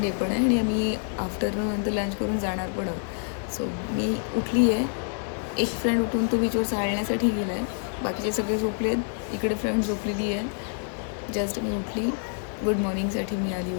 डे पण आहे आणि आम्ही आफ्टरनून नंतर लंच करून जाणार पण आहोत. सो मी उठली आहे. एक फ्रेंड उठून तो बीचवर चालण्यासाठी गेला आहे, बाकीचे सगळे झोपले आहेत. इकडे फ्रेंड झोपलेली आहे. जस्ट मी उठली, गुड मॉर्निंगसाठी मी आली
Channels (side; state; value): right; silent; 60 dB below the other